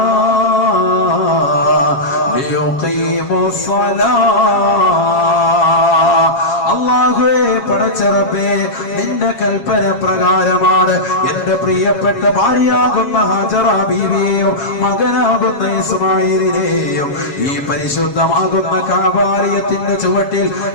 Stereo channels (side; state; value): right; late; 7.3 ms